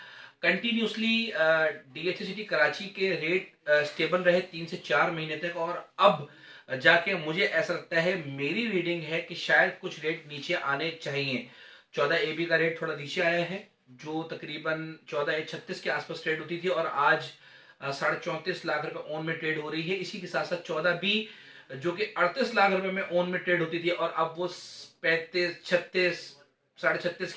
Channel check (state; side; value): identical; both; correlation 1.00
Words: कंटिन्यूसली डीएचएसटी कराची के रेट स्टेबल रहे 3 से 4 महीने तक, और अब जाके मुझे ऐसा लगता है, मेरी रीडिंग है कि शायद कुछ रेट नीचे आने चाहिए। 14 AB का रेट थोड़ा नीचे आया है, जो तकरीबन 14 36 के आसपास ट्रेड होती थी, और आज 34.5 लाख रुपए ओन में ट्रेड हो रही है। इसी के साथ साथ 14B जो कि 38 लाख रुपए में ओन में ट्रेड होती थी, और अब वो 35 36 36.5